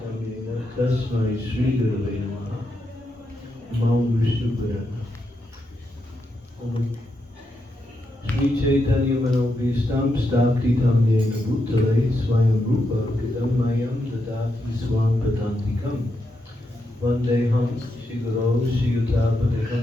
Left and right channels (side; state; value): both; normal; correlation 0.84